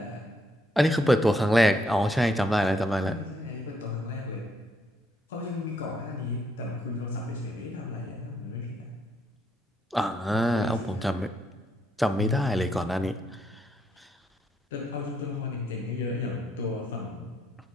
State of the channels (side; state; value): both; normal; correlation 0.74